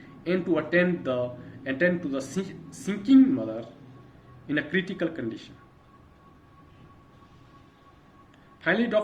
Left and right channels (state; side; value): identical; both; correlation 1.00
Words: and to attend the attend to the sinking mother in a critical condition. Finally,